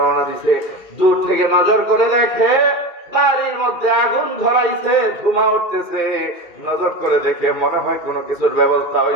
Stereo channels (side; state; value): right; late; 2.4 ms